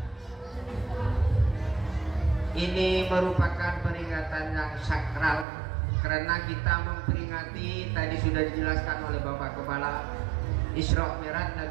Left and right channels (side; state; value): left; drops out; at 5.5 s